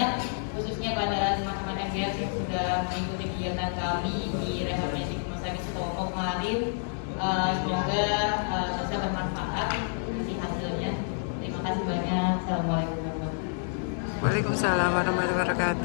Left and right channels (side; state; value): right; silent; digital silence